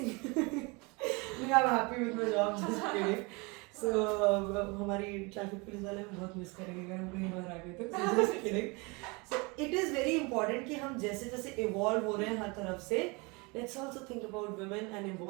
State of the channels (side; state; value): left; quieter; 28.0 dB